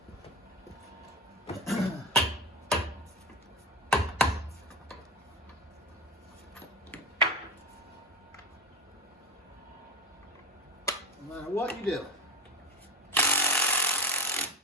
No matter what you do. All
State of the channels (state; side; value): normal; both; correlation 0.22